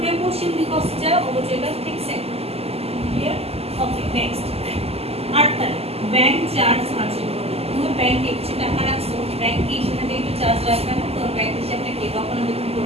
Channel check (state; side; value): late; left; 0.29 ms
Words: পশ্চিম দিক আসছে যায়, অবচয়টা ঠিক সেম। ক্লিয়ার? ওকে, নেক্সট 8 তারিখ ব্যাংক চার্জ হাসিল করবে। তুমি ব্যাংকে কিছু টাকা রাখছো, ব্যাংক কি সেখানে একটু চার্জ রাখবে না? তো ব্যাংক হিসাবে কে কখনো বেতন